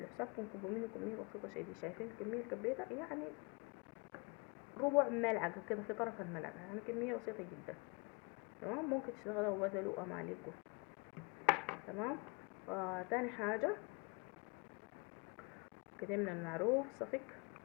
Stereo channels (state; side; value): quieter; right; 30.8 dB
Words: حسابكم، كبوا منه كمية بسيطة شديد. شايفين الكمية اللي كبيتها؟ يعني ربع ملعقة كده في طرف الملعقة، يعني كمية بسيطة جدا. تمام. ممكن تشتغلوا وبدلوا اماليكم. تمام. تاني حاجة كتمنا المعروف صفك،